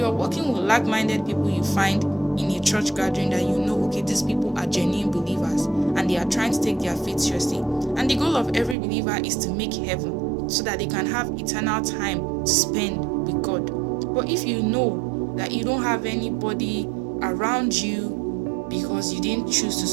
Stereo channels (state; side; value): drops out; left; at 8.8 s